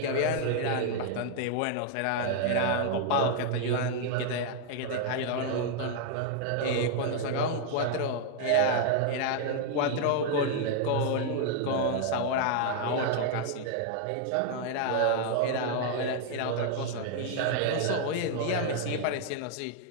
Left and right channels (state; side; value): different; both; correlation 0.00